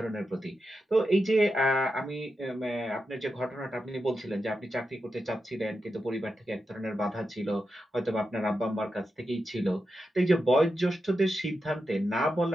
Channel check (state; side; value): normal; both; correlation 0.88